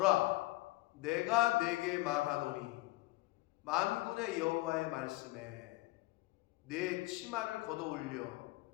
내가 내게 말하노니 만군의 여호와의 말씀에 내 치마를 걷어올려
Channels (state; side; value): quieter; right; 20.4 dB